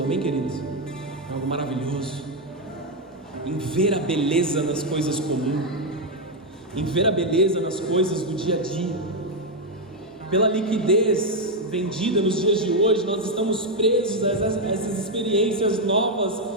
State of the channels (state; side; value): normal; both; correlation 0.02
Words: amém, queridos? Foi algo maravilhoso. Em ver a beleza nas coisas comuns, em ver a beleza nas coisas do dia a dia. Pela liquidez vendida nos dias de hoje, nós estamos presos a essas experiências novas,